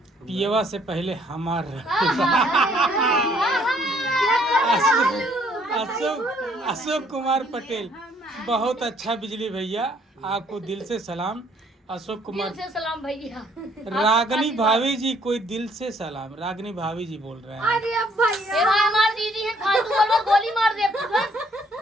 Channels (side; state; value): both; normal; correlation 0.64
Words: पियवा से पहले हमार अशोक कुमार पटेल बहुत अच्छा बिजली भैया, आपको दिल से सलाम। अशोक कुमार दिल से सलाम भैया। रागनी भाभी जी कोई दिल से सलाम, रागनी भाभी जी बोल रहे हैं। अरे अब भैया ए भाई हमार दीदी है, फालतू बोलो गोली मार दे